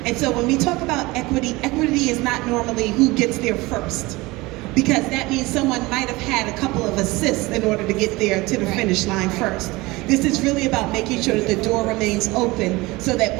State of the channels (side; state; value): left; quieter; 21.8 dB